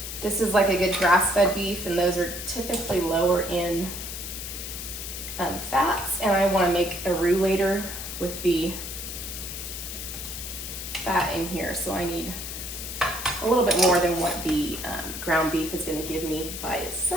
This is like a good grass-fed beef, and those are typically lower in fats, and I want to make a roux later with the fat in here, so I need a little bit more than what the ground beef is going to give me by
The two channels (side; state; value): left; noise; hiss, 7 dB below the sound